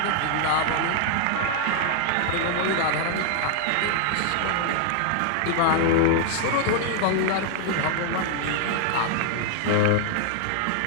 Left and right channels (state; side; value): different; both; correlation 0.00